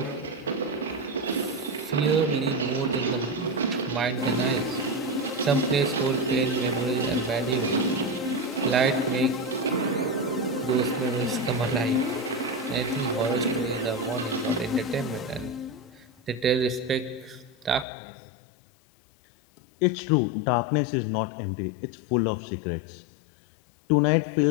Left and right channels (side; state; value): right; drops out; at 17.9 s